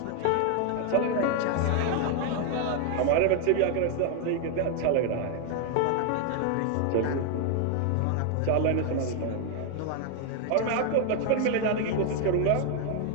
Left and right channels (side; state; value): both; different; correlation 0.00